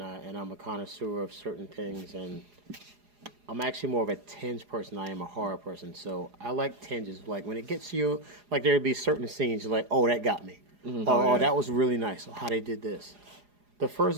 I'm a connoisseur of certain things, and I'm actually more of a tinge person than I am a horror person. So I like tinges. Like when it gets to you, like there'd be certain scenes you're like, oh, that got me. Oh, that was really nice. Oh, how they did this. The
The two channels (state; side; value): late; left; 4.8 ms